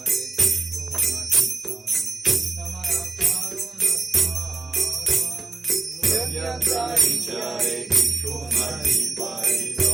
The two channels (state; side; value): quieter; left; 3.5 dB